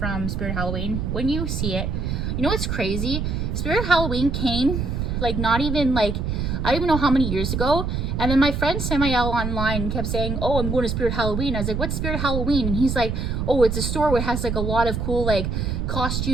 Spirit Halloween. When you see it, you know what's crazy? Spirit Halloween came like not even like, I don't even know how many years ago. And then my friend Samael online kept saying, oh, I'm going to Spirit Halloween. I was like, what's Spirit Halloween? And he's like, oh, it's a store where it has like a lot of cool like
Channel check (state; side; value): noise; right; rumble, 1 dB below the sound